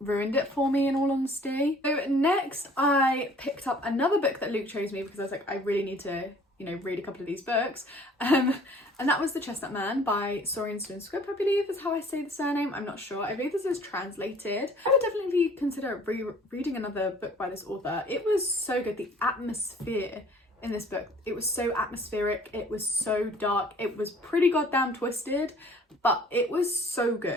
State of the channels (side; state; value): both; normal; correlation 0.54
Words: it for me, in all honesty. So next I picked up another book that Luke chose me, because I was like, I really need to, you know, read a couple of these books, and that was The Chestnut Man by Saurian Stone Script, I believe is how I say the surname. I'm not sure. I believe this is translated. I would definitely consider reading another book by this author. It was so good. The atmosphere in this book, it was so atmospheric, it was so dark, it was pretty goddamn twisted, but it was so